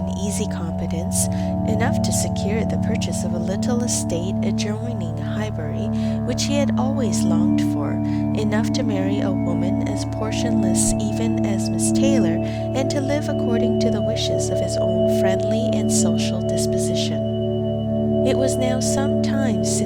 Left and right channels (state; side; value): identical; both; correlation 1.00